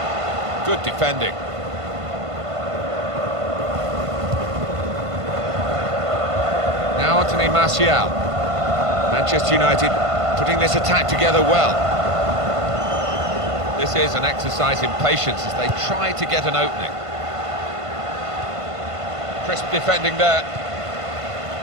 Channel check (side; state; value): left; late; 1.5 ms